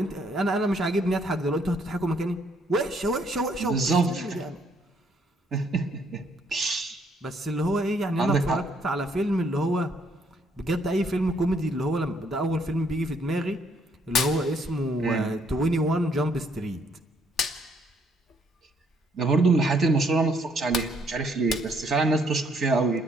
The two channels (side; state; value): both; normal; correlation 0.68